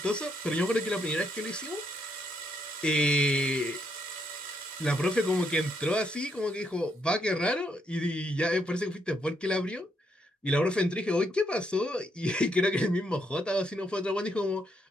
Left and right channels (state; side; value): normal; both; correlation 0.76